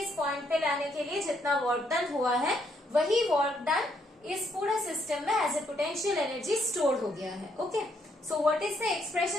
इस point पे लाने के लिए जितना work done हुआ है, वही वर्क डन इस पूरे सिस्टम में as a potential energy store हो गया है। Okay, so what is the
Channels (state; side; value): normal; both; correlation 0.73